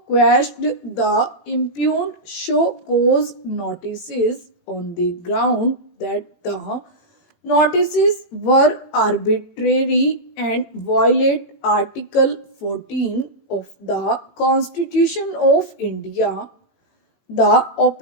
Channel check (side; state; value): right; late; 18 ms